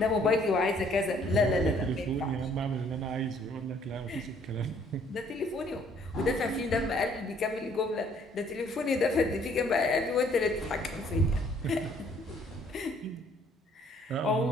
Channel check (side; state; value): both; normal; correlation 0.62